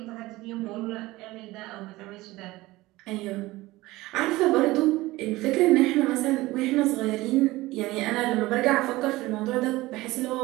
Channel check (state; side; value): quieter; left; 19.1 dB